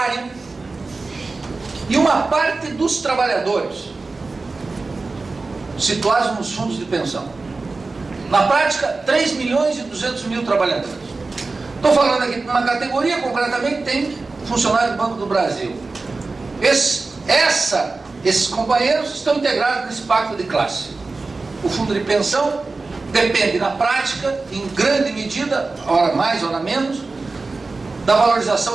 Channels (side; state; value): left; quieter; 3.7 dB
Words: e uma parte dos trabalhadores, situados nos fundos de pensão. Na prática, 3 milhões e 200 mil trabalhadores. Estou falando aqui de uma categoria, concretamente, tem funcionário do Banco do Brasil. Esses companheiros estão integrados nesse pacto de classe. O fundo de pensão depende, na prática, em grande medida, hora mais, hora menos, da